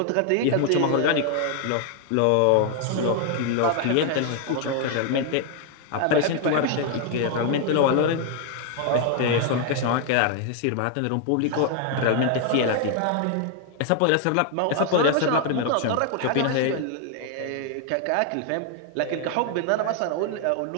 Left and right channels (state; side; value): different; both; correlation 0.00